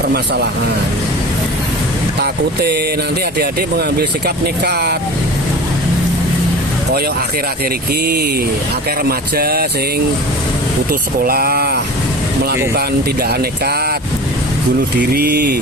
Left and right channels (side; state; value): both; normal; correlation 0.36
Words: permasalahan. Takute nanti adik-adik mengambil sikap nekat. Koyok akhir-akhir iki akeh remaja sing putus sekolah, melakukan tindakan nekat, bunuh